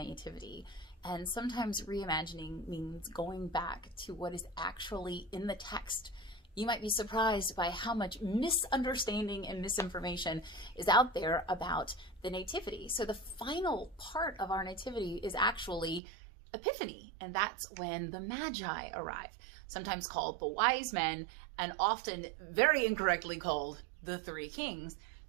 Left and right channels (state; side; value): drops out; left; at 16.0 s